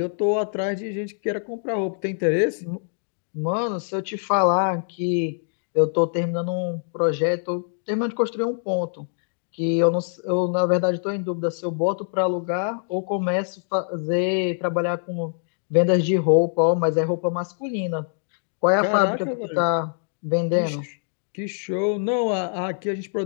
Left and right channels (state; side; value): silent; right; digital silence